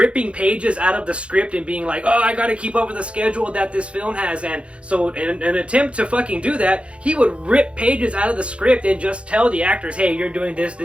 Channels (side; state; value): left; late; 0.060 ms